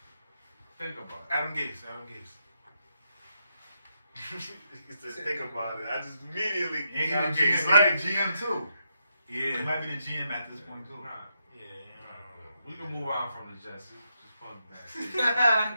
Think about it. Adam Gase. He said, think about it. I just immediately... And he Adam the Gase, GM, like- he the GM too. He Yeah. might be the GM at this point too. Nah, Yeah. we can move on from the Jets. Just put them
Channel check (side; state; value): both; inverted; correlation -0.82